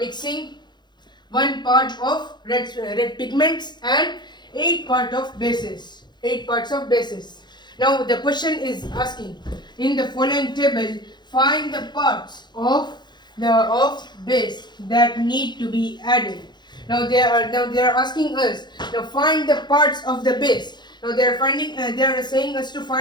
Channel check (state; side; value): late; right; 0.21 ms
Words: 1 part of red pigments and 8 parts of bases. 8 parts of bases. Now, the question is asking, in the following table, find the parts of base that need to be added. Now they are asking us to find the parts of the base. Now they are saying us to